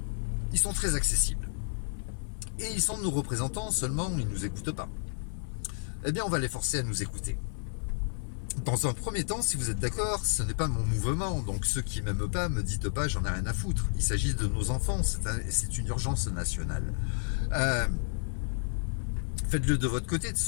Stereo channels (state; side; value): silent; right; 57 dB below the other